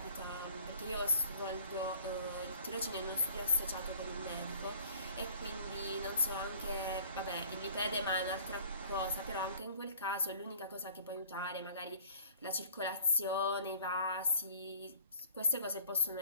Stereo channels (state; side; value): inverted; both; correlation -0.51